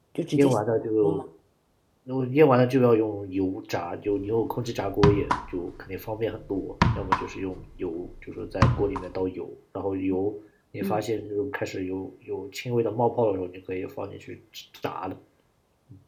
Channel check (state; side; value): identical; both; correlation 1.00